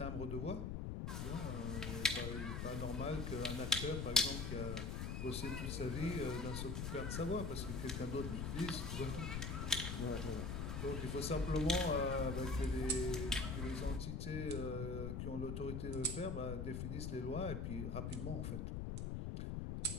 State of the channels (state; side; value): noise; left; rumble, 2 dB below the sound